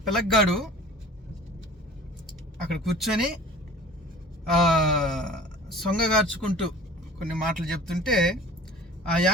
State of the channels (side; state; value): both; normal; correlation 0.44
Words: పిల్లగాడు అక్కడ కూర్చొని సొంగగార్చుకుంటూ కొన్ని మాటలు చెప్తుంటే ఆ